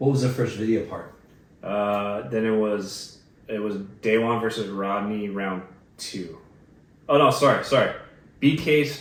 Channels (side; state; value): both; identical; correlation 1.00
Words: was the first video part? Then it was Day One versus Rodney round 2. Oh no, sorry. BK's